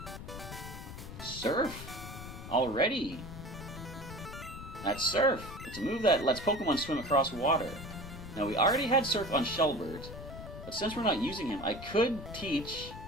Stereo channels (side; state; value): left; noise; rumble, 11 dB below the sound